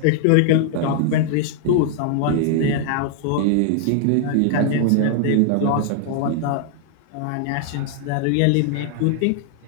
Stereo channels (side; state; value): both; different; correlation 0.00